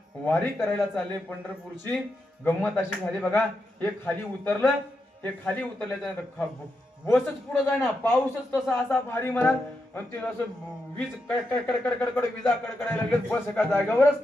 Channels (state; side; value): normal; both; correlation 0.85